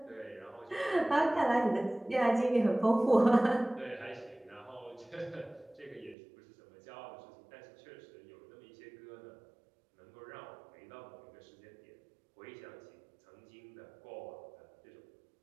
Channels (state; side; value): drops out; left; at 6.2 s